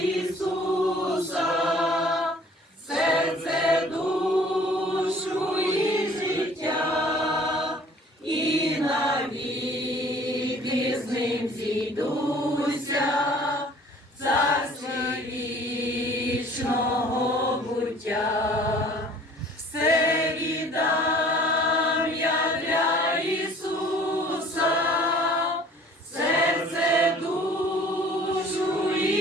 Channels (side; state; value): both; normal; correlation 0.52